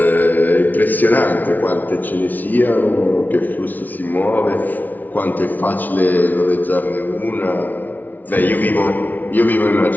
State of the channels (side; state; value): right; late; 0.082 ms